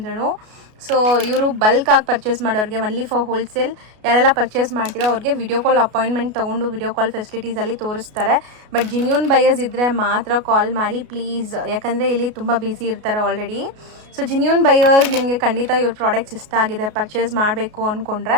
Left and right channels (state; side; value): late; left; 33 ms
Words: ಸೊ ಇವರು ಬಲ್ಕಾಗಿ ಪರ್ಚೇಸ್ ಮಾಡೋರಿಗೆ, ಒನ್ಲಿ ಫಾರ್ ಹೋಲ್ಸೇಲ್ ಯಾರೆಲ್ಲ ಪರ್ಚೇಸ್ ಮಾಡ್ತೀರೋ ಅವ್ರಿಗೆ ವಿಡಿಯೋ ಕಾಲ್ ಅಪಾಯಿಂಟ್ಮೆಂಟ್ ತೊಗೊಂಡು ವಿಡಿಯೋ ಕಾಲ್ ಫೆಸಿಲಿಟೀಸಲ್ಲಿ ತೋರಿಸ್ತಾರೆ. ಬಟ್ ಜಿನ್ಯೂನ್ ಬಯರ್ಸ್ ಇದ್ದರೆ ಮಾತ್ರ ಕಾಲ್ ಮಾಡಿ ಪ್ಲೀಸ್, ಯಾಕಂದರೆ ಇಲ್ಲಿ ತುಂಬ ಬ್ಯುಸಿ ಇರ್ತಾರೆ ಆಲ್ರೆಡಿ. ಸೊ ಜಿನ್ಯೂನ್ ಬಯರ್ಸ್ ನಿಮಗೆ ಖಂಡಿತ ಇವ್ರ ಪ್ರಾಡಕ್ಟ್ಸ್ ಇಷ್ಟ ಆಗಿದೆ, ಪರ್ಚೇಸ್ ಮಾಡಬೇಕು ಅಂದ್ಕೊಂಡ್ರೆ